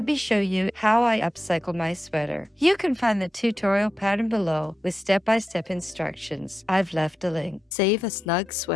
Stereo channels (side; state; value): both; normal; correlation 0.89